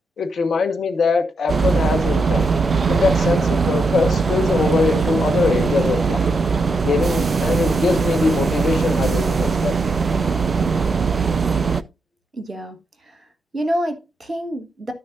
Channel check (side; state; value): both; normal; correlation 0.82